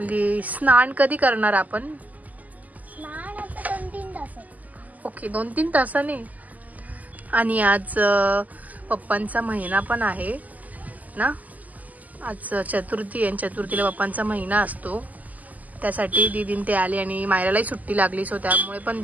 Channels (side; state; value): left; late; 0.079 ms